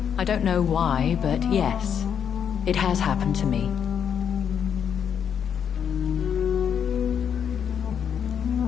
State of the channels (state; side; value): quieter; right; 8.0 dB